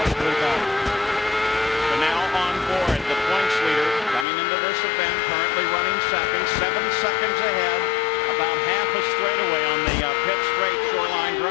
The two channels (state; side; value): drops out; right; at 4.2 s